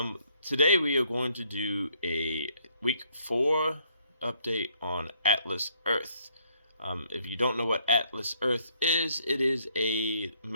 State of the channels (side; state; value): both; inverted; correlation -0.67